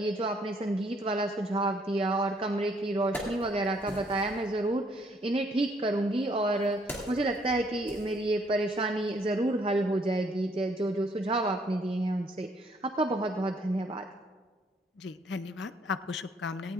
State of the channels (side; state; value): both; normal; correlation 0.67